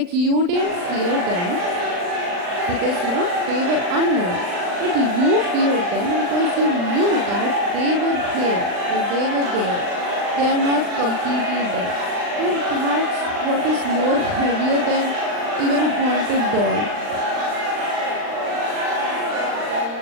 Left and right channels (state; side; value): late; left; 39 ms